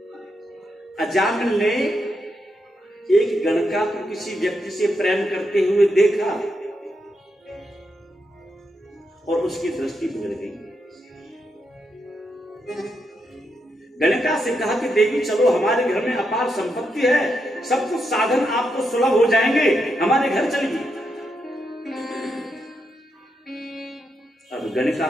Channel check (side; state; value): both; normal; correlation 0.82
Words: अजामिल ने एक गणका को किसी व्यक्ति से प्रेम करते हुए देखा और उसकी दृष्टि बिगड़ गई। गणका से कहा कि देवी चलो, हमारे घर में अपार संपत्ति है, सब कुछ साधन आपको सुलभ हो जाएंगे, हमारे घर चलिए। अब गणका